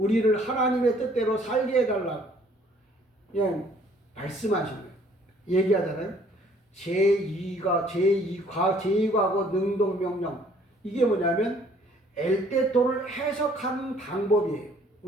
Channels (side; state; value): both; normal; correlation 0.59